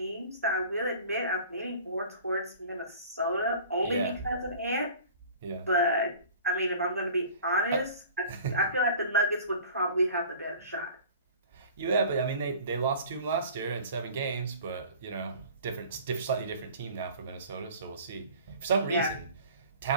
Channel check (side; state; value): both; inverted; correlation -0.44